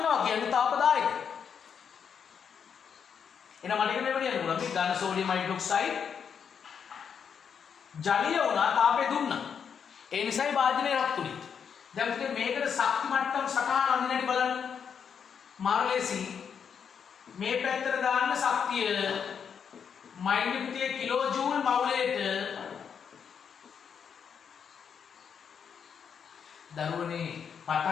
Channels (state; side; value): quieter; right; 7.2 dB